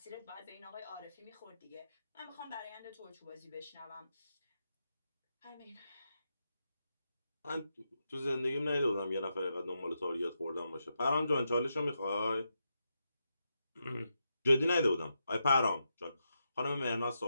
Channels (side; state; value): both; inverted; correlation -0.86